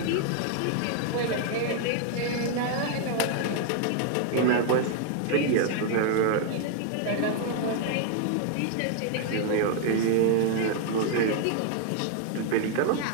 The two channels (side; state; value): both; different; correlation 0.00